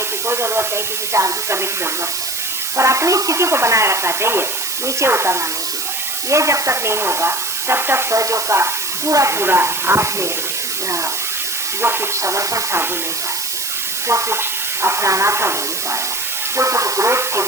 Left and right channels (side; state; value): right; noise; hiss, 2 dB below the sound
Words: की कोई जरूरत नहीं, किसी से आर्ग्यू करने की जरूरत नहीं, पर अपनी स्थिति को बनाए रखना चाहिए, नीचे उतरना नहीं चाहिए। ये जब तक नहीं होगा तब तक सहयोग का पूरा पूरा आपने जो कुछ समर्पण था वो नहीं पाए, जो कुछ अपनाना था वो नहीं पाया, जो कुछ ग्रोथ थे